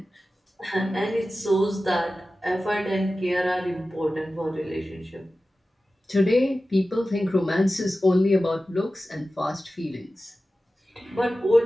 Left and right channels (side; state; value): both; normal; correlation 0.95